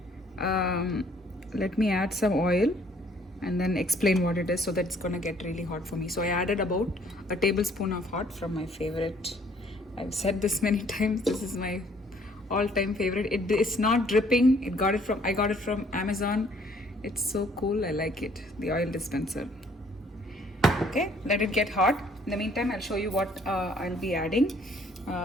let me add some oil and then explain what it is so that it's gonna get really hot for me. So I added about a tablespoon of hot from my favorite. I've said this many times. This is my all-time favorite. It's not dripping. I got it from Amazon. It's so cool. I like it. The oil dispenser. Okay, let it get hot. In the meantime, I'll show you what I'll be adding.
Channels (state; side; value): normal; both; correlation 0.62